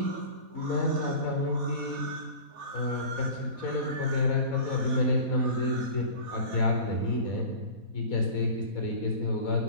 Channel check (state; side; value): late; left; 4.1 ms